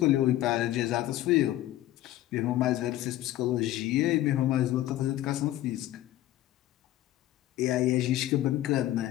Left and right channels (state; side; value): quieter; right; 14.4 dB